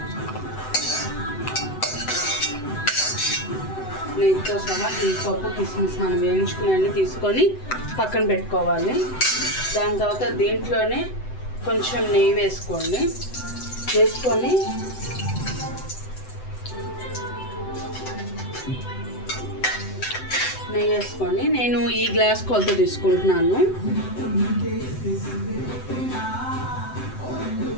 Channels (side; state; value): right; late; 7.9 ms